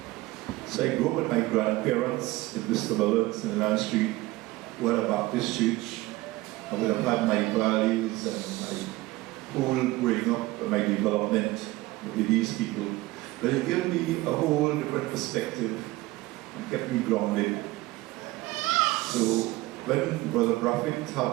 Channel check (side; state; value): left; quieter; 19.4 dB